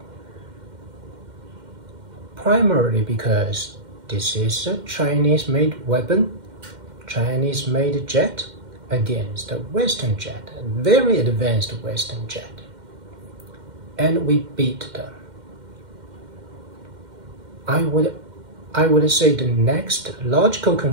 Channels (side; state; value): left; late; 2.1 ms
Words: primarily because this is a Chinese-made weapon, Chinese-made jet against a Western jet, a very advanced Western jet. and we beat them. I would say the next logical